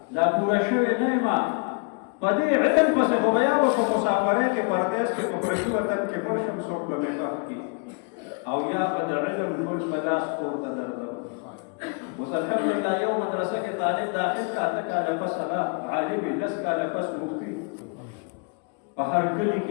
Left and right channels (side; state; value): right; quieter; 36.4 dB